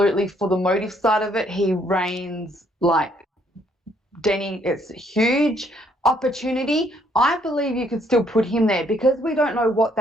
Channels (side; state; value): both; normal; correlation 0.68